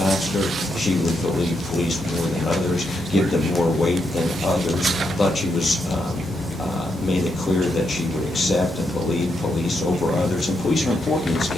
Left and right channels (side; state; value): both; normal; correlation 0.81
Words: she would believe police more than others, give them more weight than others. Thought she was made it clear that she would accept and believe police over others. And police are important in this